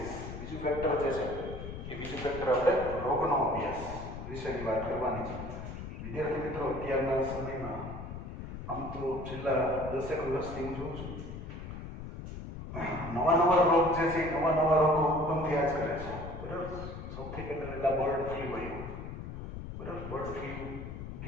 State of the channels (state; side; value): noise; left; rumble, 9 dB below the sound